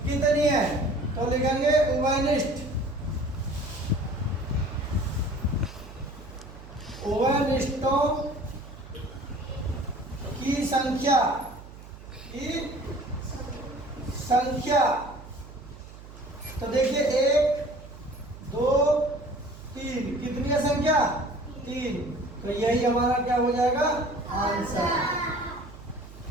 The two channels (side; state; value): right; noise; hum, 17 dB below the sound